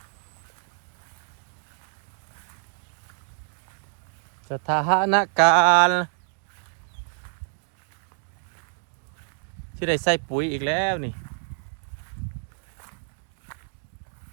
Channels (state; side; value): silent; left; digital silence